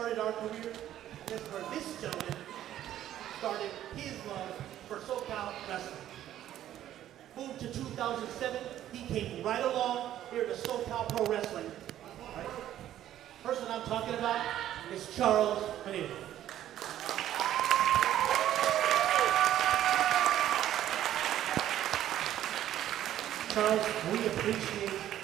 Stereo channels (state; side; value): quieter; left; 12.1 dB